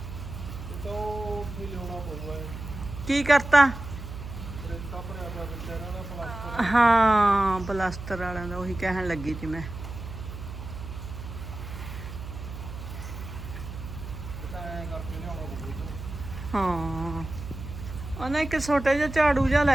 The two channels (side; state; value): right; noise; hum, 10 dB below the sound